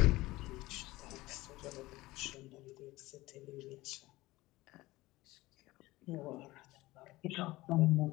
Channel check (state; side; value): quieter; right; 19.1 dB